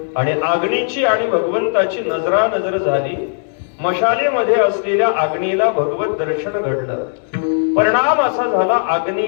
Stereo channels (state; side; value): silent; right; 68 dB below the other